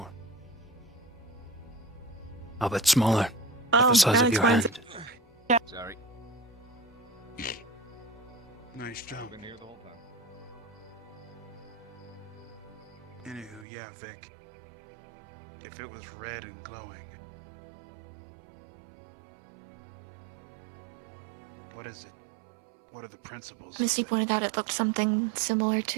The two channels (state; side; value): drops out; left; at 13.7 s